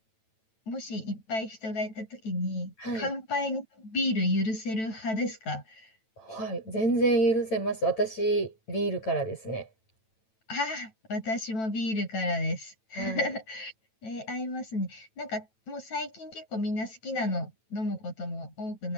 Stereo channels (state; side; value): late; right; 9.1 ms